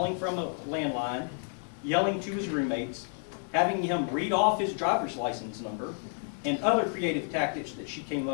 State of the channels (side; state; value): right; silent; 58 dB below the other